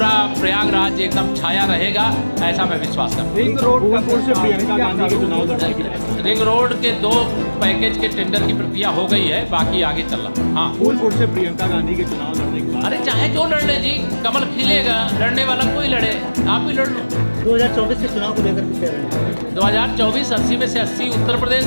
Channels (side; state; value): both; inverted; correlation -1.00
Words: प्रयागराज एकदम छाया रहेगा, ऐसा मैं विश्वास करता हूँ। रिंग रोड से प्रियंका गांधी के चुनाव लड़ने की रिंग रोड के 2 पैकेज के टेंडर की प्रक्रिया हो गई है, बाकी आगे चल रहा। हाँ, फूलपुर से प्रियंका गांधी के चुनाव लड़ने के बाद अरे चाहे जो लड़ ले जी, कमल खिलेगा, लड़ने वाला कोई लड़े, आप ही लड़ लो। 2024 के चुनाव को लेकर क्या है? 2024 80 में से 80 उत्तर प्रदेश